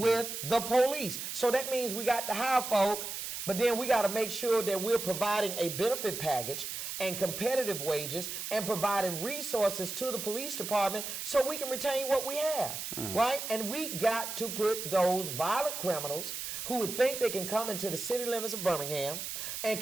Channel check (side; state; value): right; noise; hiss, 6 dB below the sound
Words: the police. So that means we got to hire folk, but then we got to make sure that we're providing a benefit package and competitive wages and providing resources to the police department so we can retain what we have, right? And we got to put those violent criminals who would think they can come into the city limits of Birmingham and